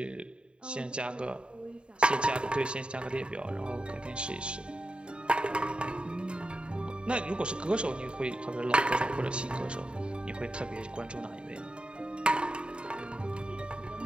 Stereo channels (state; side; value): late; left; 0.053 ms